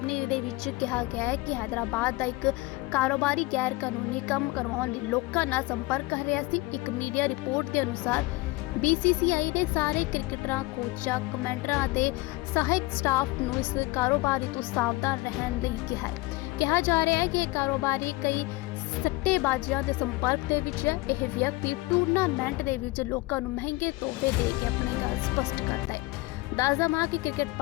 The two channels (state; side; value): quieter; right; 21.2 dB